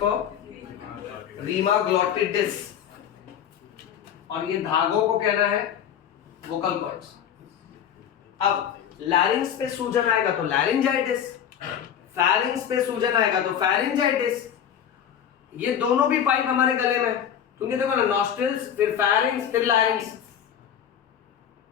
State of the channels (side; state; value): right; quieter; 9.2 dB